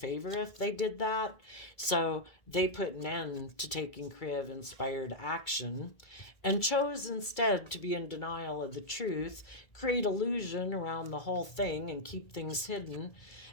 if they did that. So they put an end to taking creative, inspired action and chose instead to be in denial of the truth, create illusion around the whole thing and keep things hidden,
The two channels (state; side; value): late; right; 2.3 ms